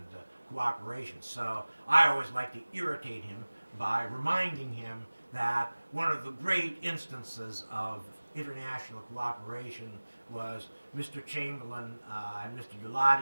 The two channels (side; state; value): both; inverted; correlation -1.00